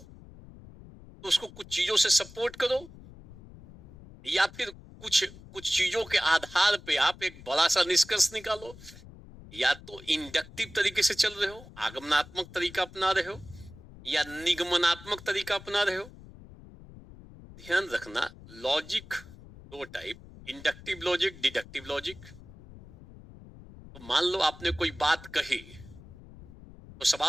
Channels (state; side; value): noise; left; rumble, 19 dB below the sound